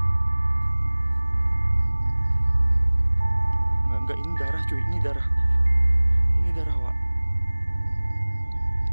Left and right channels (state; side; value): inverted; both; correlation -1.00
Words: Enggak, ini darah cuy, ini darah. Ini darah, Wak.